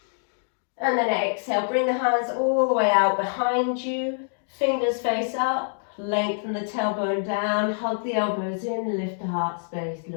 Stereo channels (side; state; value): right; silent; digital silence